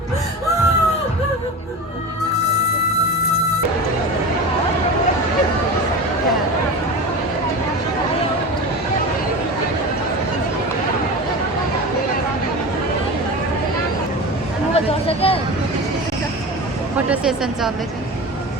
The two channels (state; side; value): normal; both; correlation 0.29